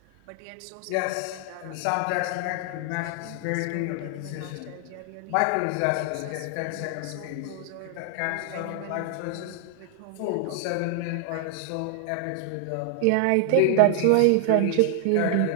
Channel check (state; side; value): different; both; correlation 0.00